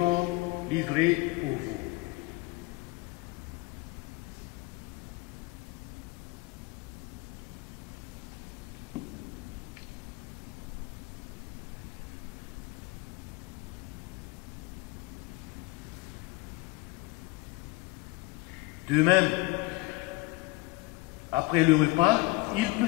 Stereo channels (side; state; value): right; quieter; 21.6 dB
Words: livré pour vous. » De même, après le repas, il